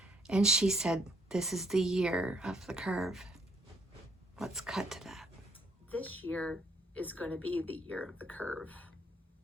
and she said, "This is the year of the curve." Let's cut to that. This year is going to be the year of the curve.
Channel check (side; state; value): both; normal; correlation 0.68